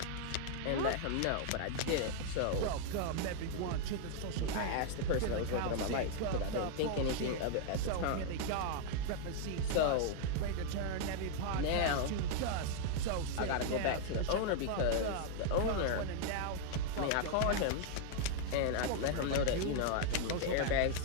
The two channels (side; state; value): both; different; correlation 0.00